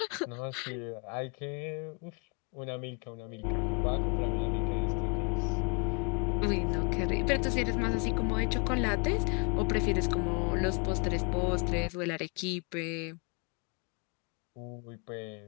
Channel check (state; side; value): quieter; right; 34.5 dB